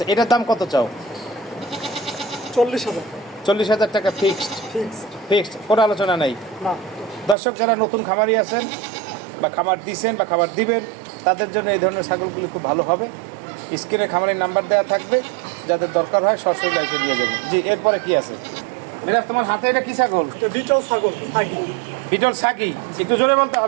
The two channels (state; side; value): drops out; left; at 7.4 s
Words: এটার দাম কত চাও? 40,000। 40,000 টাকা ফিক্সড। কোনো আলোচনা নাই। না। দর্শক, যারা নতুন খামারি আছেন বা খামার দিছেন বা খামার দিবেন, তাদের জন্য এই ধরনের ছাগলগুলি খুব ভালো হবে। স্ক্রিনে খামারের নাম্বার দেওয়া থাকবে, যাদের দরকার হয় সরাসরি এসে দিয়ে যাবেন। জি, এরপরে কি আছে? মিরাজ, তোমার হাতে এটা কি ছাগল? এটা বিটল ছাগল সাগি। বিটল সাগি, একটু জোরে বলতে